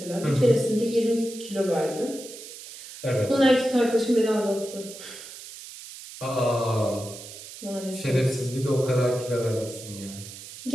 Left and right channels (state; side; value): noise; right; hiss, 14 dB below the sound